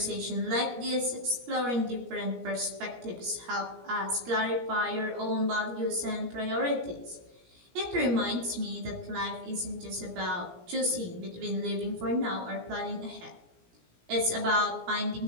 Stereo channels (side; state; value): left; late; 17 ms